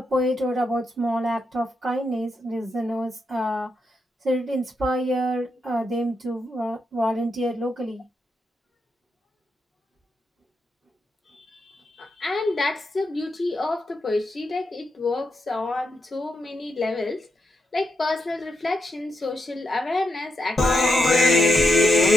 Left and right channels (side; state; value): both; normal; correlation 0.84